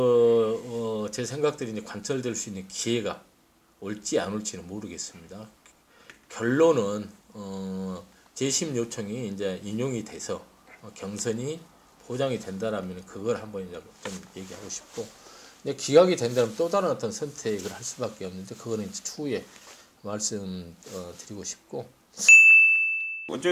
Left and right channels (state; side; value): identical; both; correlation 1.00